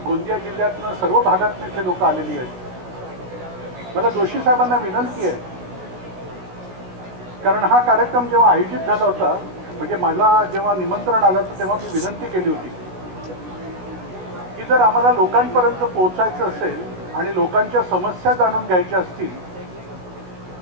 गोंदिया जिल्ह्यातनं सर्व भागातून इथे लोक आलेली आहेत. मला जोशी साहेबांना विनंती आहे, कारण हा कार्यक्रम जेव्हा आयोजित झाला होता, म्हणजे मला जेव्हा निमंत्रण आलं तर तेव्हा मी विनंती केली होती की जर आम्हाला लोकांपर्यंत पोहोचायचं असेल आणि लोकांच्या समस्या जाणून घ्यायच्या असतील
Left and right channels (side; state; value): left; late; 16 ms